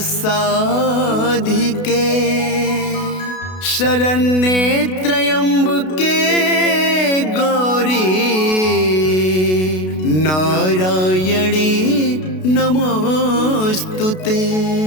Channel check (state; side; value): late; right; 32 ms